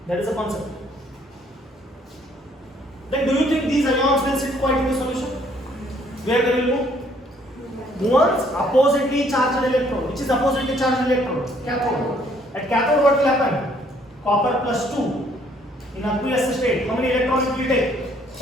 That is a concept. Then do you think these ions will sit quiet in the solution? Where they will move? Moves oppositely charged electrode. Which is oppositely charged electrode? Cathode. At cathode what will happen? Copper plus 2 in aqueous state. How many electrons it will take?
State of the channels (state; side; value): normal; both; correlation 0.64